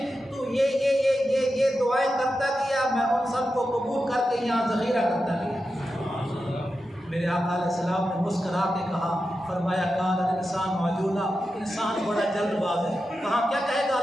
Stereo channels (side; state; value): both; normal; correlation 0.90